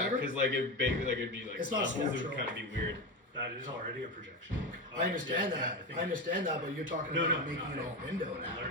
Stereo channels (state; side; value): normal; both; correlation 0.18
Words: because like it'd be like It's not levels, it would structural. kind of be weird. That is already a projection. I understand Yeah, that. I think- I understand that, but you're talking No, about no, making no, it all window I'm now.